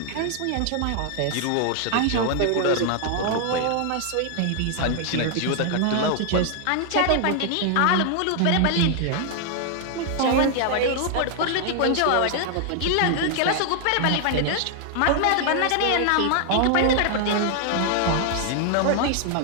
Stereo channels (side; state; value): both; different; correlation 0.00